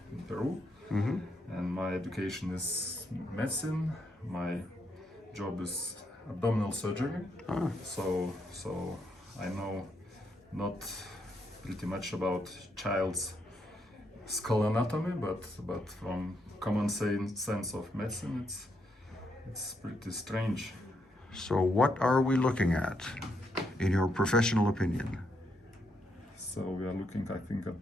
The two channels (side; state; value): both; normal; correlation 0.78